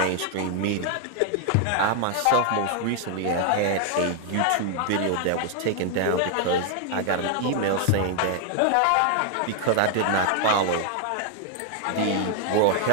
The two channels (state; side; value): different; both; correlation 0.00